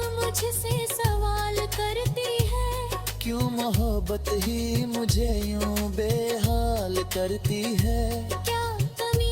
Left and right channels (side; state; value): both; identical; correlation 1.00